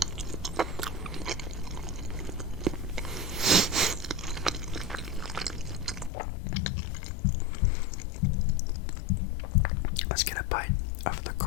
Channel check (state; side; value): drops out; right; at 6.1 s